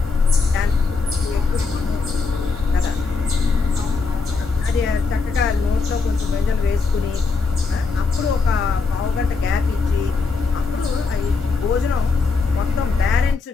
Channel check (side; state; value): right; quieter; 4.4 dB